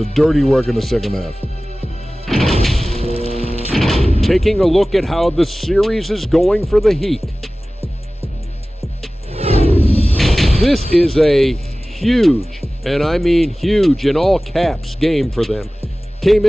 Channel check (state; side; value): normal; both; correlation 0.97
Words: dirty work in the second half. Taking a look at how the series is going for the Heat. This is a huge, and I mean huge in all caps, game for them. Came